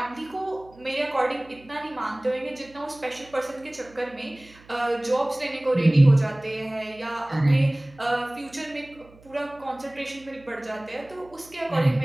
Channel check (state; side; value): noise; right; hum, 25 dB below the sound